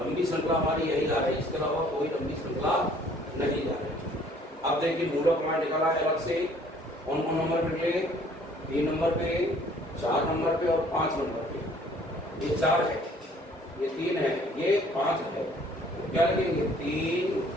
लंबी श्रृंखला हमारी यही जा रही है, इसके अलावा कोई लंबी श्रृंखला नहीं जा रही। अब देखिए मूलक हमारा निकला है अलग से। कौन कौन नंबर पे निकले? 3 नंबर पे, 4 नंबर पे और 5 नंबर पे। ये 4 है, ये 3 है, ये 5 है। तो क्या लगेंगे? 3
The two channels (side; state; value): both; normal; correlation 0.57